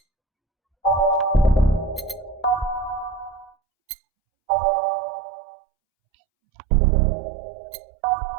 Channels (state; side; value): drops out; left; at 3.5 s